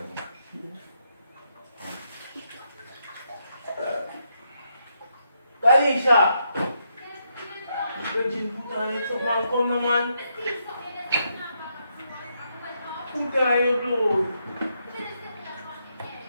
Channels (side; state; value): both; inverted; correlation -0.79